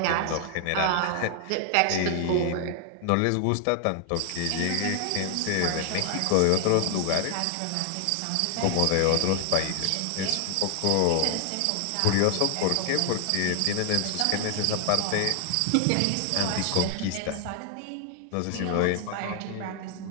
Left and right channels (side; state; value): both; different; correlation 0.00